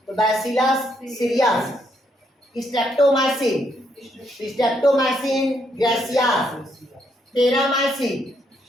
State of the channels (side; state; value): both; normal; correlation 0.75